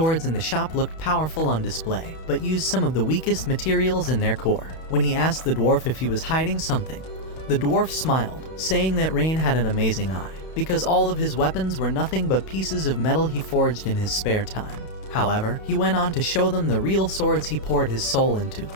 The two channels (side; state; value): right; late; 31 ms